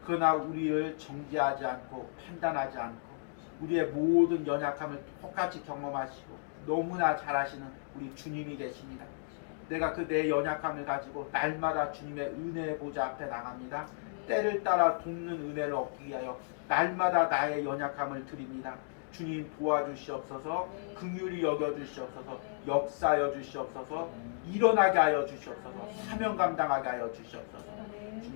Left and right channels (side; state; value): right; silent; digital silence